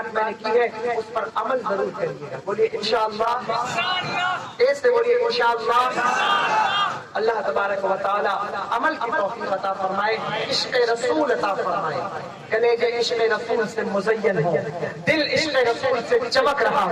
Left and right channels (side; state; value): both; identical; correlation 1.00